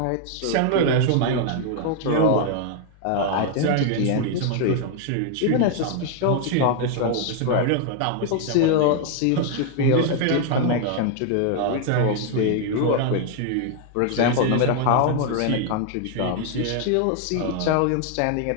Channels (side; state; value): both; different; correlation 0.00